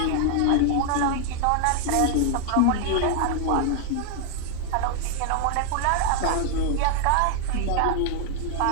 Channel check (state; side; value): different; both; correlation 0.00